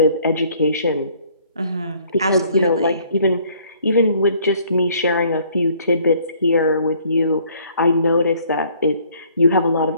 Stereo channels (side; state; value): both; inverted; correlation -0.60